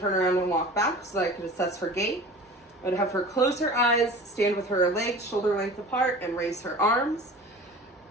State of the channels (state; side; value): normal; both; correlation 0.39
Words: around and walk back so that I could assess her gait. I would have her close her eyes, stand with her legs shoulder length apart, and raise her arms